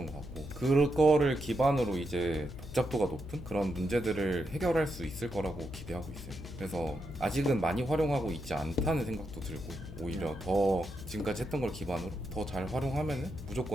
것 같고 그거를 기반으로 이제 복잡도가 높은 그런 문제들을 해결할 수 있을 거라고 기대하고 있어요. 그래서 아직은 많이 활용하고 있지 않다는 생각도 들고 오히려 더 지금까지 했던 걸 기반으로 더 잘 활용하면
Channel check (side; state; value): left; noise; hum, 12 dB below the sound